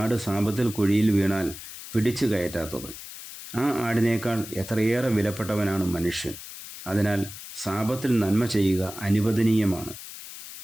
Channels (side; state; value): left; noise; hiss, 13 dB below the sound